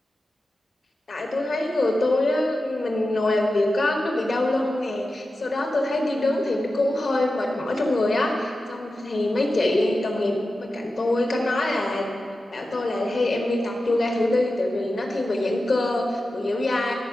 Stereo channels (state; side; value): normal; both; correlation 0.93